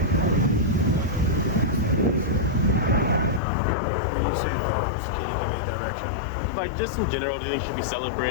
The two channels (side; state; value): right; drops out; at 3.4 s